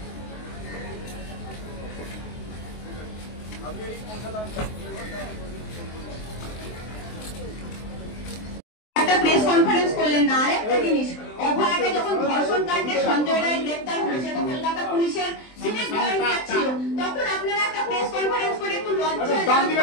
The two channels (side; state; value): right; late; 23 ms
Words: একটা প্রেস কনফারেন্স করলেন না। আরেকটা জিনিস, অভয়াকে যখন ধর্ষণ কাণ্ডে সঞ্জয় রায় গ্রেপ্তার হয়েছে, কলকাতা পুলিশের সিভিক ভলেন্টিয়ার ছিল, তখন আপনারা একটা প্রেস কনফারেন্স করে একটু লজ্জা